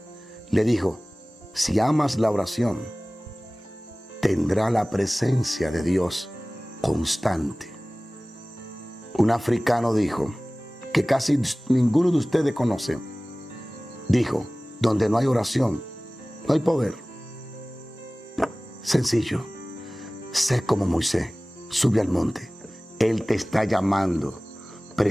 le dijo, si amas la oración, tendrá la presencia de Dios constante. Un africano dijo, que casi ninguno de ustedes conoce, dijo, donde no hay oración, no hay poder. Sencillo, sé como Moisés, sube al monte, Él te está llamando,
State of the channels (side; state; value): both; normal; correlation 0.98